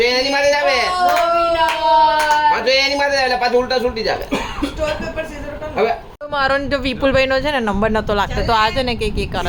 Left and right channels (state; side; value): identical; both; correlation 1.00